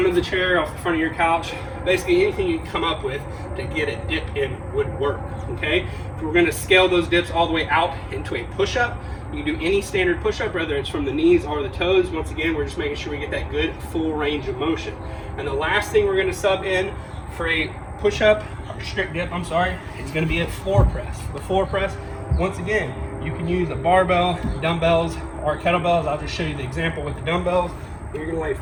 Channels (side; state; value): both; identical; correlation 1.00